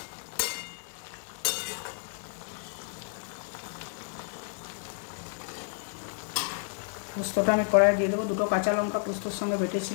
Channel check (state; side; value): silent; right; digital silence